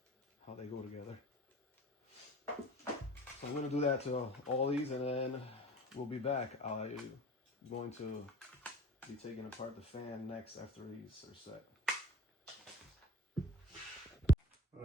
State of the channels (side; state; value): both; normal; correlation 0.41